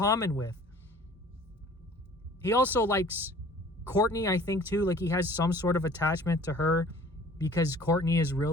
with. He also likes Courtney, I think, too. Like, he has some sort of attachment to her because Courtney is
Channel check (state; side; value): normal; both; correlation 0.50